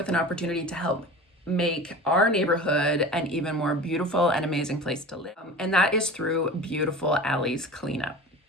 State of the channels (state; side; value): normal; both; correlation 0.35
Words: an opportunity to help make our neighborhood an even more beautiful and amazing place to live. And that is through Beautiful Alleys Cleanup.